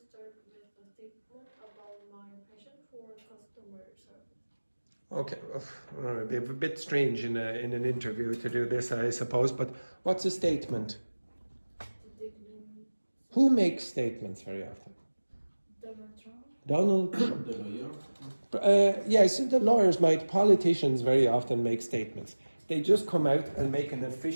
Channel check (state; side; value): inverted; both; correlation -1.00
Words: start with a statement about my passion for customer service. Okay, it'd be a bit strange in an interview to do this, I suppose, but what's a statement? Who makes statements very often? Donald Trump. The lawyer? Yes, the lawyers might, politicians very often make statements. They just come out and make an